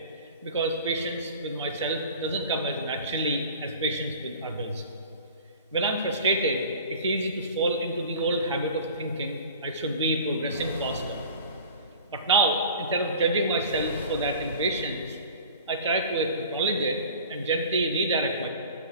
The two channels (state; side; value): inverted; both; correlation -0.41